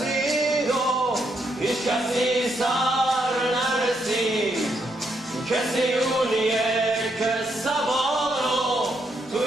و هیچ کسی سر نرسید، کسی اونیه که سوارو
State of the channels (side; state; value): both; normal; correlation 0.77